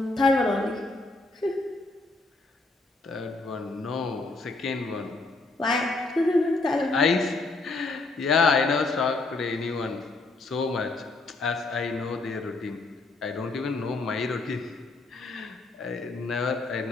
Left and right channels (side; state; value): right; quieter; 3.4 dB